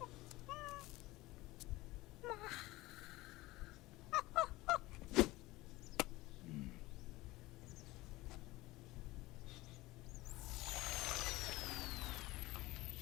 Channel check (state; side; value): quieter; right; 19.5 dB